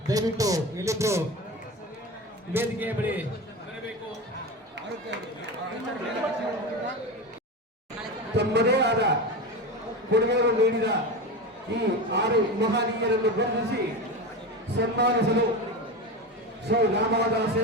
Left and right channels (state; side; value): normal; both; correlation 0.23